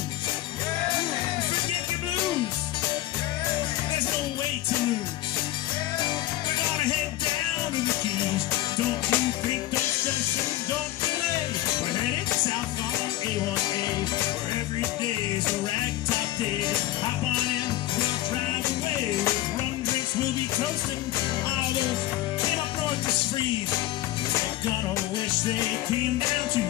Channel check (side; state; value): right; quieter; 15.2 dB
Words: Forget the blues. There's no way to lose. We're gonna head down to the Keys. Don't you think, don't stress and don't delay. We're headed south on A1A, where every day is a ragtop day. Hop on in, we'll drive away. With rum drinks, we'll be coasting. All those came up north to freeze. They're gonna wish they came down to